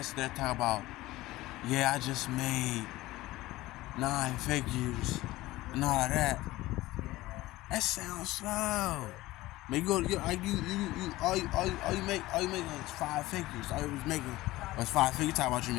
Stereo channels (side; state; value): right; quieter; 18.0 dB